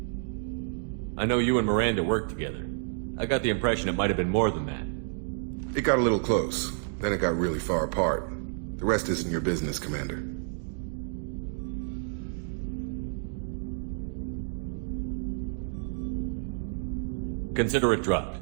I know you and Miranda worked together. I got the impression it might have been more than that. It got a little close. Then it got really far apart. The rest isn't your business, Commander. Consider it dropped.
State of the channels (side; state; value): left; silent; digital silence